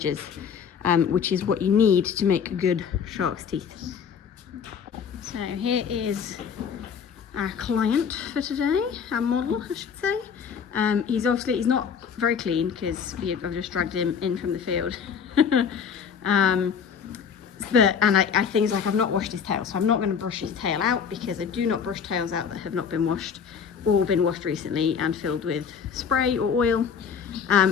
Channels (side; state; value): right; quieter; 6.9 dB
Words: which is what you need to make good shark's teeth. So here is our client for today, our model I should say. He's not very clean because I've just dragged him in from the field. Things like I've not washed his tail, so I'm not going to brush his tail out, because I do not brush tails out that have not been washed or been washed recently and filled with spray or oil.